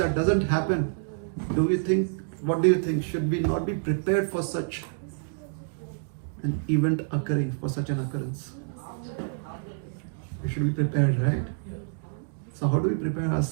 doesn't happen, what do you think? Should we not be prepared for such an event occurring, for such an occurrence? We should be prepared, right? So how do we prepare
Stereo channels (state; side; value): silent; left; digital silence